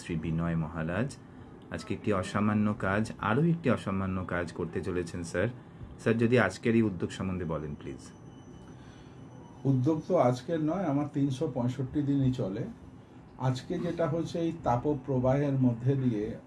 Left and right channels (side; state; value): both; identical; correlation 1.00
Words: Shri Binoy Maharaj আজকে একটি অসামান্য কাজ, আরও একটি অসামান্য কাজ করতে চলেছেন স্যার। স্যার, যদি আজকের এই উদ্যোগ সম্বন্ধে বলেন প্লিজ। উদ্যোগ তো আজকের নয়, আমার 365 দিনই চলে। আজকে যেটা হচ্ছে, এই তাপপ্রবাহের মধ্যে দিয়ে